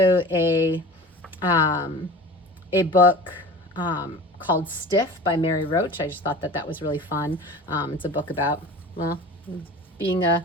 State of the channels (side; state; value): both; normal; correlation 0.37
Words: a book called Stiff by Mary Roach. I just thought that that was really fun. It's a book about, well, being